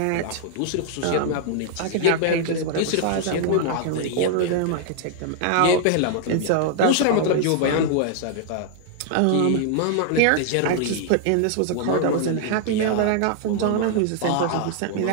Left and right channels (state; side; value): different; both; correlation 0.00